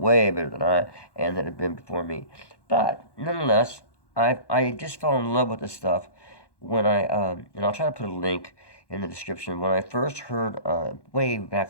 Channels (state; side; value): late; right; 1.1 ms